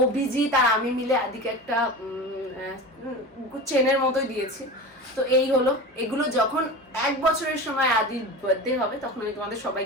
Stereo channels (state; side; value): normal; both; correlation 0.30